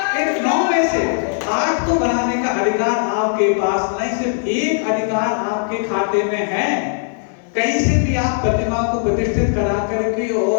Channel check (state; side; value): silent; right; digital silence